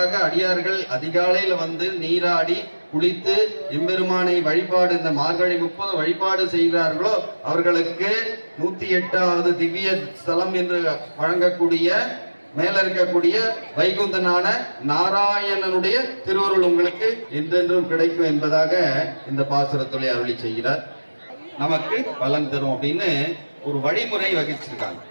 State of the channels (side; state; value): both; inverted; correlation -1.00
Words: அடியார்கள் அதிகாலையில் வந்து நீராடி குளித்து எம்பெருமானை வழிபாடு இந்த மார்கழி 30 வழிபாடு செய்கிறார்களோ அவர்களுக்கு 108வது திவ்ய ஸ்தலம் என்று வழங்கக்கூடிய மேல இருக்கக்கூடிய வைகுந்தனான நாராயணனுடைய திருவருள் உங்களுக்கு என்றென்றும் கிடைக்கும் என்பதாக இந்த பாசுரத்துறை அருளி செய்கிறார். நமக்கு பலன் தரும் அப்படின்னு ஒரு வழிமுறை வகிச்சிருக்காங்க.